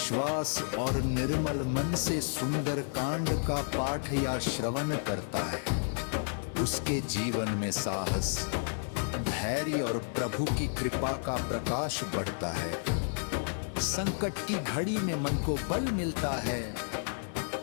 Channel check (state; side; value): silent; right; 57 dB below the other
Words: और निर्मल मन से सुंदर कांड का पाठ या श्रवण करता है, उसके जीवन में साहस, धैर्य और प्रभु की कृपा का प्रकाश बढ़ता है। संकट की घड़ी में मन को बल मिलता है